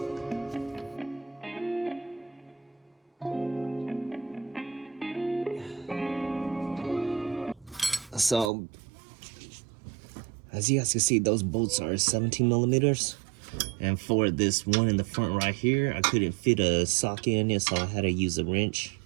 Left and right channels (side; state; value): left; drops out; at 8.5 s